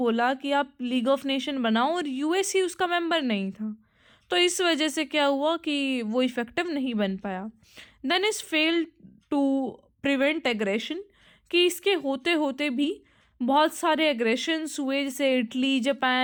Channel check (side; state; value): both; identical; correlation 1.00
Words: कि आप लीग ऑफ नेशन बनाओ और यूएस ही उसका मेंबर नहीं था, तो इस वजह से क्या हुआ कि वो इफेक्टिव नहीं बन पाया। Then is failed to prevent aggression, कि इसके होते होते भी बहुत सारे एग्रेशंस हुए, जैसे इटली,